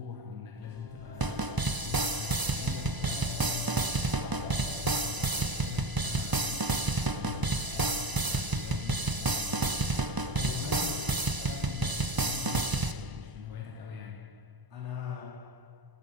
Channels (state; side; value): late; left; 1.0 ms